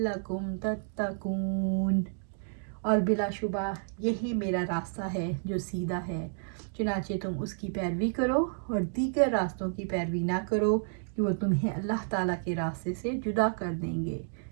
تتقون۔ اور بلا شبہ یہی میرا راستہ ہے جو سیدھا ہے، چنانچہ تم اس کی پیروی کرو اور دیگر راستوں کی پیروی نہ کرو کہ وہ تمہیں اللہ تعالیٰ کے راستے سے جدا کر دیں گے۔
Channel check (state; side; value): silent; left; digital silence